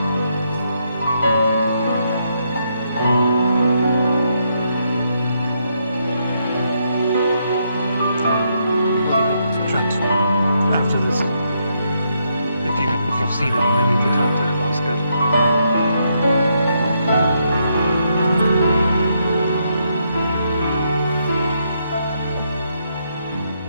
After this, if you've seen him, I need to talk to Osgood.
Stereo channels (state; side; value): inverted; both; correlation -0.77